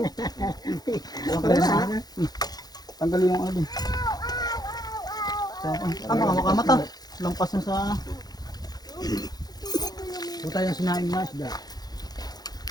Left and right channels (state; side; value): late; right; 0.19 ms